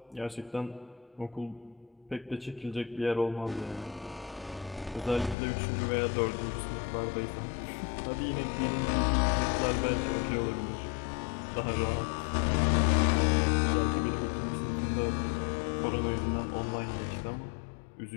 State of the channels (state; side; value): drops out; right; at 5.4 s